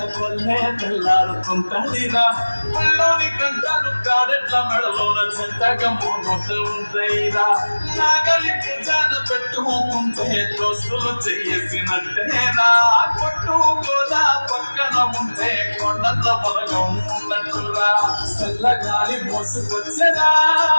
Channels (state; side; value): inverted; both; correlation -1.00